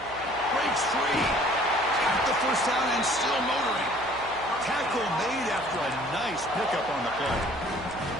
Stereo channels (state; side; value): noise; right; hum, 18 dB below the sound